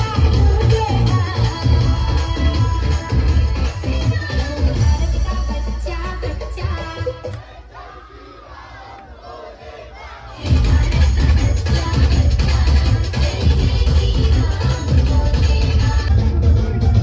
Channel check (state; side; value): identical; both; correlation 1.00